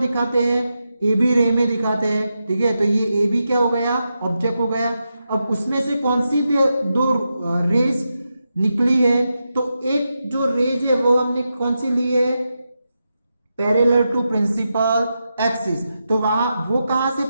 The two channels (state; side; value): inverted; both; correlation -0.88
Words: दिखाते हैं, AB रे में दिखाते हैं, ठीक है। तो ये AB क्या हो गया, ऑब्जेक्ट हो गया। अब उसमें से कौन सी दो रेज निकली है, तो एक जो रेज है वो हमने कौन सी ली है, पैरेलल टू प्रिंसिपल एक्सिस। तो वहां वो कहां से